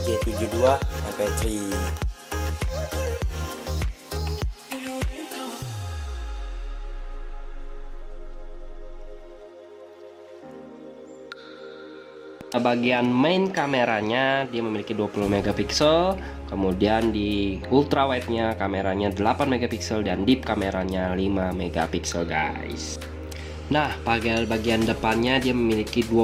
G72 MP3. Bagian main kameranya dia memiliki 20 megapiksel, kemudian di ultrawide-nya kameranya 8 megapiksel dan deep kameranya 5 megapiksel guys. Nah, bagian depannya dia memiliki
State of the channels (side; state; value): both; identical; correlation 1.00